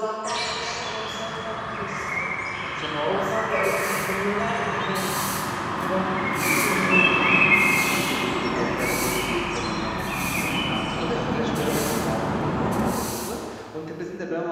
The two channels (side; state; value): both; identical; correlation 1.00